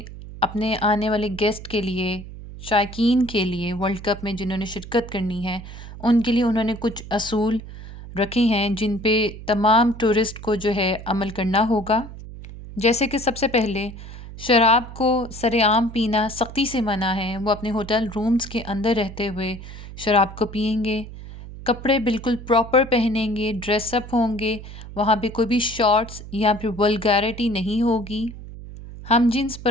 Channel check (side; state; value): right; noise; hum, 13 dB below the sound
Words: اپنے آنے والے گیسٹ کے لیے، شائقین کے لیے، ورلڈ کپ میں جنہوں نے شرکت کرنی ہے ان کے لیے انہوں نے کچھ اصول رکھے ہیں جن پہ تمام ٹورسٹ کو جو ہے عمل کرنا ہوگا۔ جیسے کہ سب سے پہلے شراب کو سر عام پینا سختی سے منع ہے، وہ اپنے ہوٹل رومز کے اندر رہتے ہوئے شراب کو پئیں گے، کپڑے بالکل پراپر پہنیں گے، ڈریس اپ ہوں گے، وہاں پہ کوئی بھی شارٹس یا پھر ولگیرٹی نہیں ہوگی۔ ہم جنس